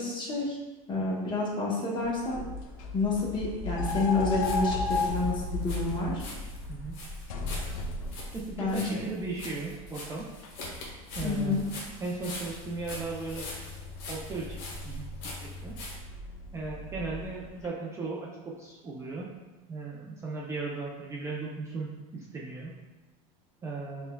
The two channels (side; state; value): both; normal; correlation 0.35